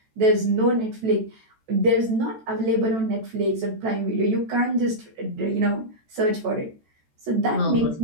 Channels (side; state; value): left; late; 14 ms